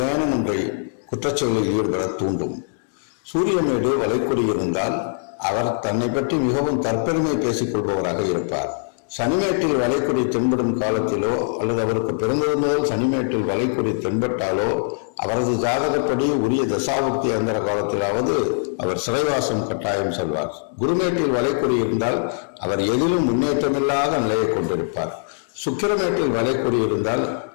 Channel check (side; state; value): right; silent; 64 dB below the other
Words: ஒன்றை குற்றச்செயலில் ஈடுபட தூண்டும். சூரியமேடு வலைக்குறி இருந்தால் அவர் தன்னை பற்றி மிகவும் தற்பெருமை பேசிக் கொள்பவராக இருப்பார். சனிமேட்டில் வலைக்குறி தென்படும் காலத்திலோ அல்லது அவருக்கு பிறந்தது முதல் சனிமேட்டில் வலைக்குறி தென்பட்டாலோ அவரது ஜாதகப்படி உரிய தசாபுக்தி அந்தர காலத்திலாவது அவர் சிறைவாசம் கட்டாயம் செல்வார். குருமேட்டில் வலைக்குறி இருந்தால் அவர் எதிலும் முன்னேற்றமில்லாத நிலையை கொண்டிருப்பார். சுக்கிரமேட்டில் வலைக்குறி இருந்தால்